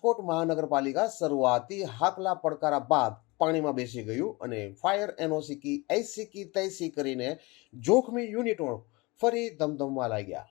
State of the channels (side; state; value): right; quieter; 24.8 dB